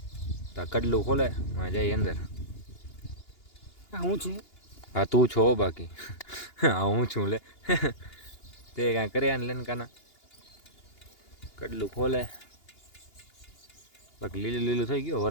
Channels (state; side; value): late; right; 2.8 ms